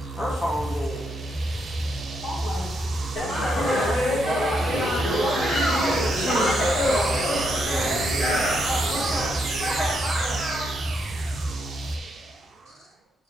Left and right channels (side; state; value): both; normal; correlation 0.79